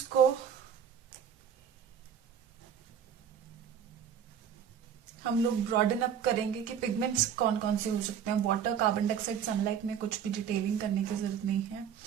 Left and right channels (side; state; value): left; quieter; 8.2 dB